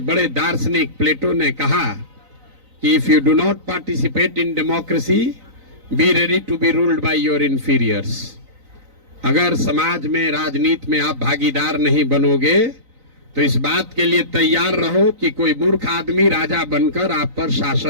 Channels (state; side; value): late; left; 3.9 ms